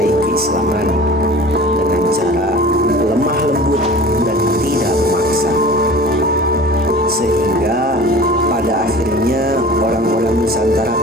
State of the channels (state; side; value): normal; both; correlation 0.40